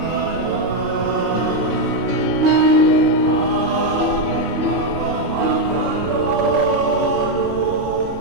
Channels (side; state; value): right; noise; rumble, 16 dB below the sound